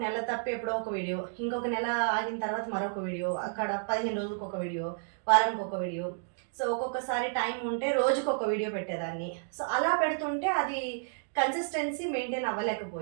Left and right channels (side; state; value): left; silent; digital silence